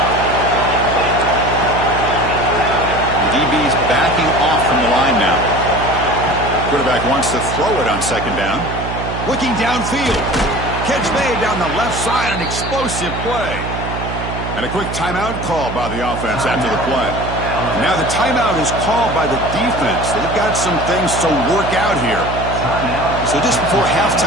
The DB's backing off from the line now. Quarterback wants to throw it on 2nd down. Looking downfield. Catch made down the left side, an explosive play. And a quick timeout call by the offense after the play. And now the timeout is called by the defense. They've got some things to work out here. So just before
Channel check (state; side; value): noise; right; hum, 6 dB below the sound